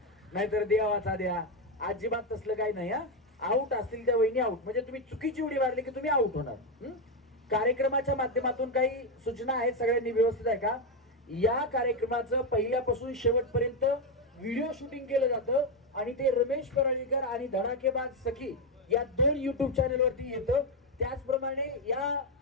नाहीतर देवाचा द्या. अजिबात तसलं काही नाही. हा आऊट असतील त्या वहिनी आऊट म्हणजे तुम्ही चुकीची उडी मारली की तुम्ही आऊट होणार. कार्यक्रमाच्या माध्यमातून काही सूचना आहेत, सगळ्यांनी व्यवस्थित आहे का? या कार्यक्रमाचं पहिल्यापासून शेवटपर्यंत व्हिडिओ शूटिंग केलं जातं आणि ते रमेश पराळीकर आणि धडाकेबाज सखी या 2 युट्यूब चॅनल वरती येतं. त्याचप्रमाणे या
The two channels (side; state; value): both; normal; correlation 0.06